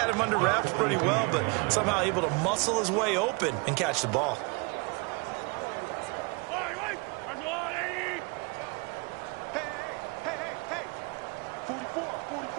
him under wraps pretty well, but somehow able to muscle his way open and catch the ball.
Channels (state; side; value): quieter; left; 29.5 dB